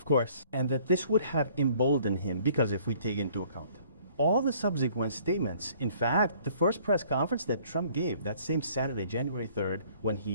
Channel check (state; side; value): inverted; both; correlation -0.57